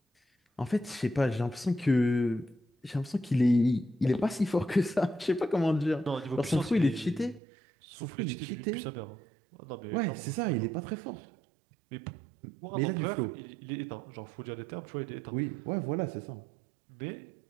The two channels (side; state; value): left; drops out; at 7.4 s